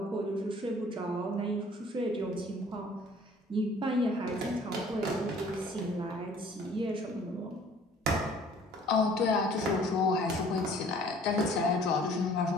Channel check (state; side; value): normal; both; correlation 0.54